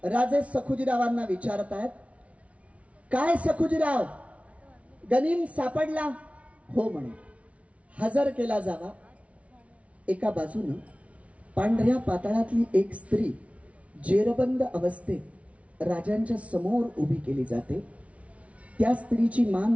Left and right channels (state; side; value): late; left; 0.064 ms